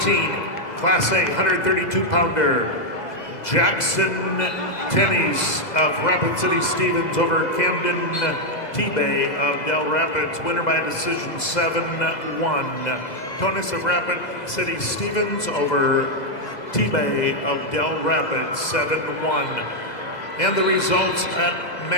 Class A 132-pounder. Jackson Tennies of Rapid City Stevens over Camden T-Bay of Del Rapids, winner by decision 7-1. Tonis of Rapid City Stevens over T-Bay of Del Rapids, 7-1. And the results at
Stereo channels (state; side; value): late; right; 2.0 ms